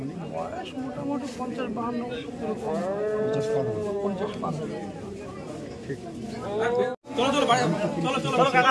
মানে বয়স মোটামুটি 50-52 এরকম। 50-52। ঠিক।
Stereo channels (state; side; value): identical; both; correlation 1.00